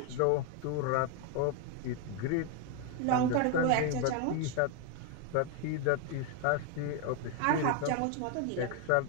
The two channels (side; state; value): both; different; correlation 0.01